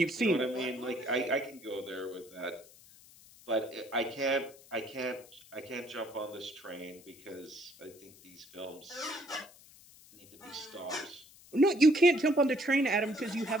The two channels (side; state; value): left; noise; hiss, 23 dB below the sound